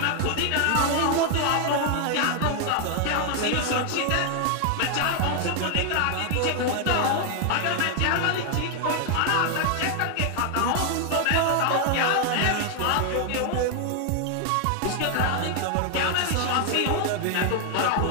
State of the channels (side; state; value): both; different; correlation 0.00